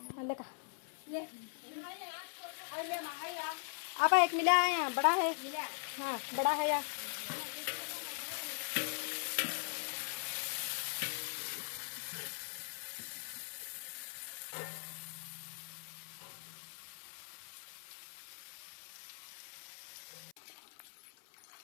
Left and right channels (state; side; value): silent; right; 51 dB below the other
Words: ले का आप एक मिला है यहाँ बड़ा है हाँ बड़ा है यार